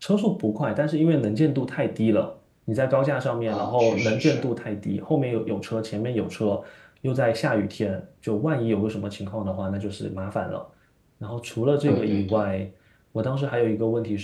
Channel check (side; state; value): both; identical; correlation 1.00